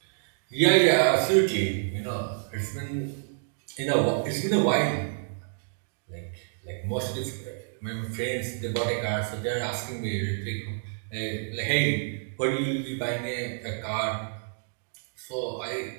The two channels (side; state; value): left; silent; digital silence